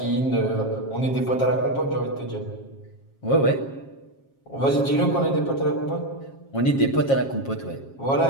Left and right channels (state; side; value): late; right; 7.4 ms